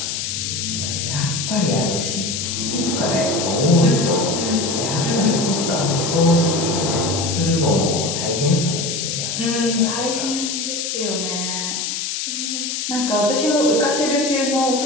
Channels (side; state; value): left; noise; hiss, 3 dB below the sound